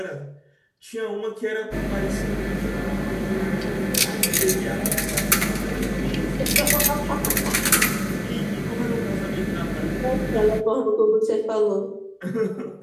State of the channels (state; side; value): identical; both; correlation 1.00